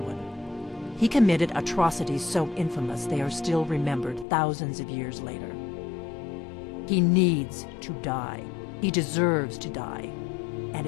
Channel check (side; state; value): right; drops out; at 4.2 s